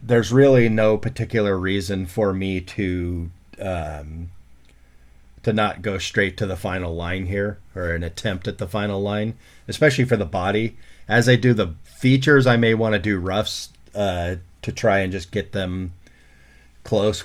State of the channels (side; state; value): both; identical; correlation 1.00